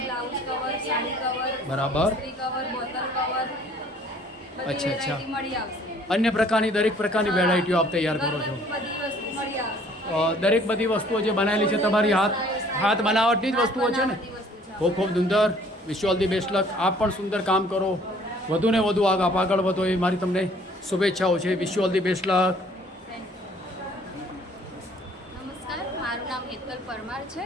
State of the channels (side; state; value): both; normal; correlation 0.57